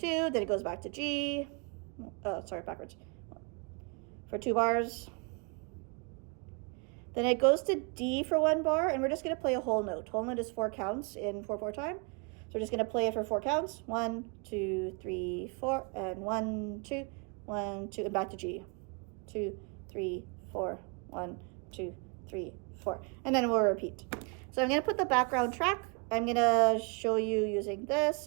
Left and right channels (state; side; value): quieter; left; 33.9 dB